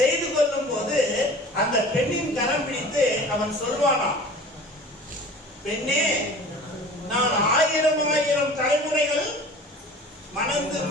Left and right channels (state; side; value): normal; both; correlation 0.42